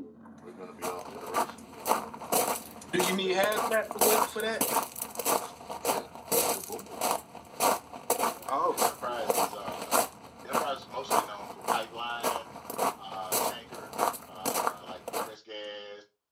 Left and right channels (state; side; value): identical; both; correlation 1.00